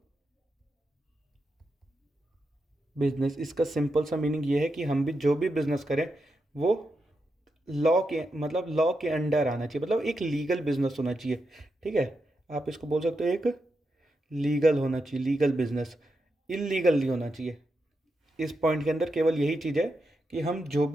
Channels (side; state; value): both; normal; correlation 0.86